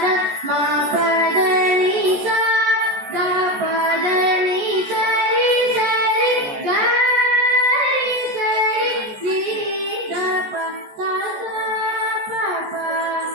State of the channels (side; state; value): left; late; 14 ms